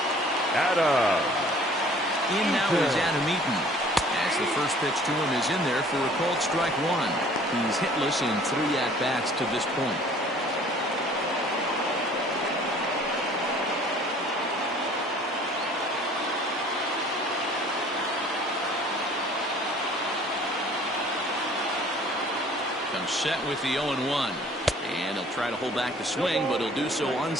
Adam. In now is Adam Eaton. As the first pitch to him is in there for a called strike one. He's hitless in 3 at-bats to this point. Comes set with the 0-1. And he'll try to hold back the swing, but he'll do so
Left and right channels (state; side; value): normal; both; correlation 0.52